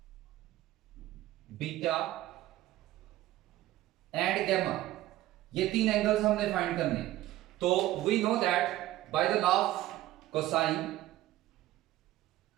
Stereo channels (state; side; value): quieter; left; 15.3 dB